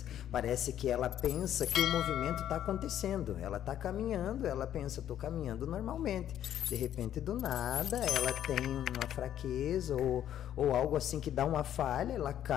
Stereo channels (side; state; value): right; quieter; 10.9 dB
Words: parece que ela pensa que o movimento está acontecendo, ela está caminhando, ela pensa, estou caminhando normalmente, de repente do nada ela tem uma fraqueza ou algo assim que dá uma falha, ela